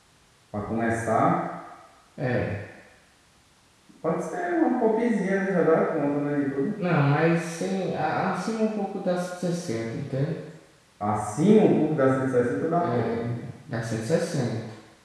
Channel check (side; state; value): both; identical; correlation 1.00